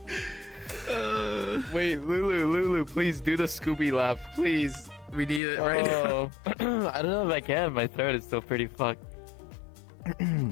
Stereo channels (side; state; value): right; drops out; at 5.4 s